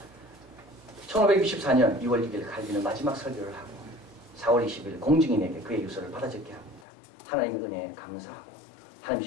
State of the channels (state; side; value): drops out; right; at 6.9 s